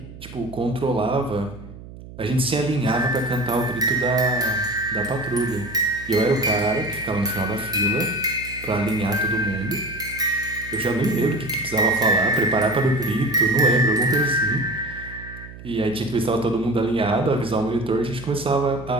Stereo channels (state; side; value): noise; right; hum, 16 dB below the sound